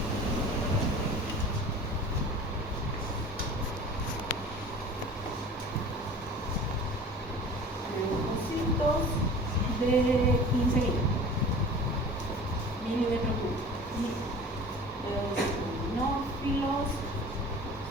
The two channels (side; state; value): both; normal; correlation 0.41